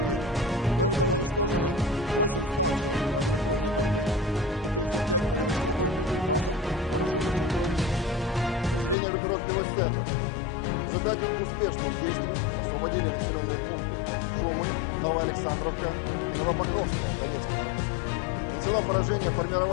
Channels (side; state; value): right; drops out; at 9.0 s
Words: Кроме того, уничтожены 8 станций радиоэлектронной борьбы и 35 полевых складов боеприпасов вооруженных сил Украины. Подразделения группировки войск «Центр» в результате успешных действий освободили населенные пункты Шумы, Новоалександровка и Новопокровская Донецкой Народной Республики. Нанесено поражение